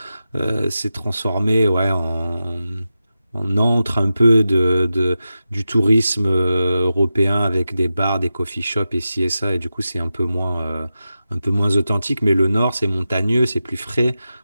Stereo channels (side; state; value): both; inverted; correlation -0.92